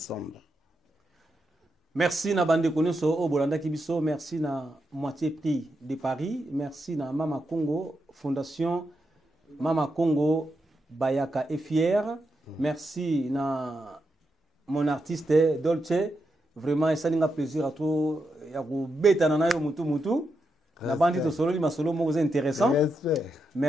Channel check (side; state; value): both; normal; correlation 0.85